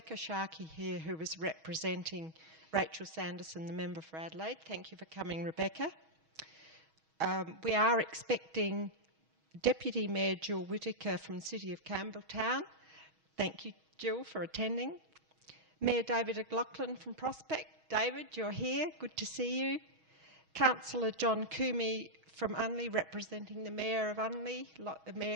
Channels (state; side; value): late; left; 6.3 ms